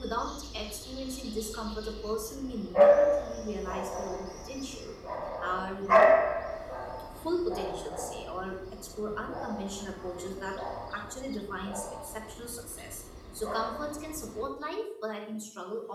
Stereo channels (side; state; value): both; identical; correlation 1.00